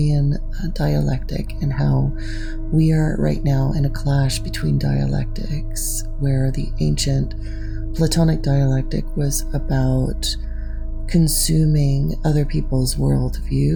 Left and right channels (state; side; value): identical; both; correlation 1.00